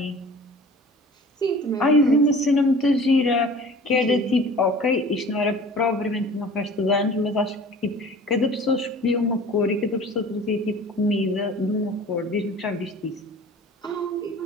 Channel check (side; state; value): both; normal; correlation 0.43